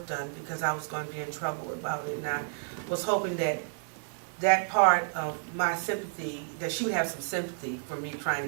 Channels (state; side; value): silent; left; digital silence